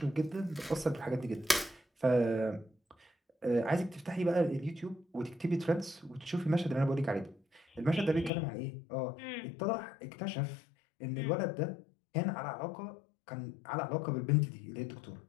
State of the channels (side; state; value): right; drops out; at 8.3 s